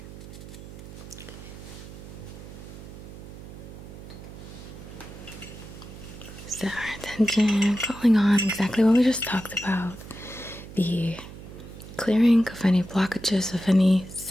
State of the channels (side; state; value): right; noise; hum, 14 dB below the sound